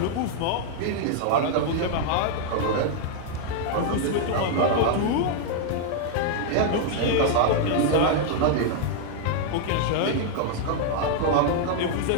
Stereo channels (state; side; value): different; both; correlation 0.00